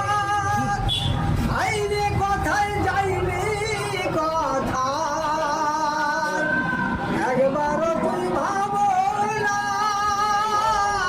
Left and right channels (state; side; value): identical; both; correlation 1.00